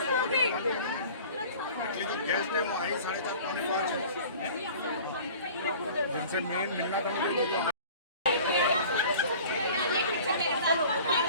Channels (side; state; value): both; inverted; correlation -0.45